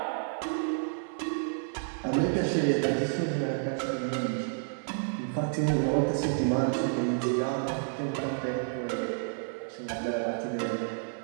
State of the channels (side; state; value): left; silent; 58 dB below the other